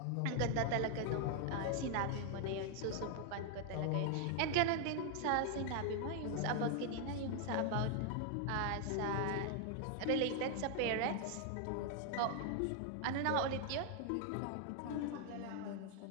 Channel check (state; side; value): different; both; correlation 0.00